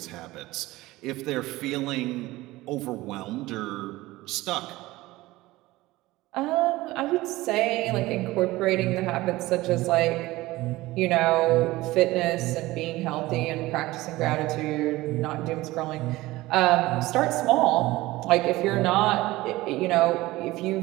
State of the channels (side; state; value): left; quieter; 18.6 dB